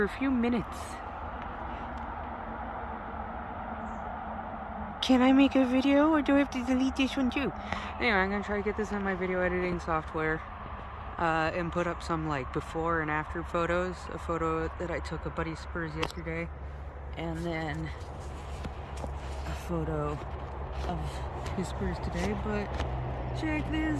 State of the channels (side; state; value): both; identical; correlation 1.00